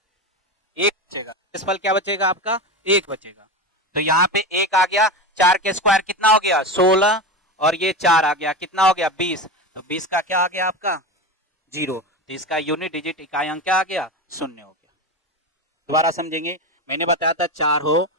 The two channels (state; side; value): normal; both; correlation 0.21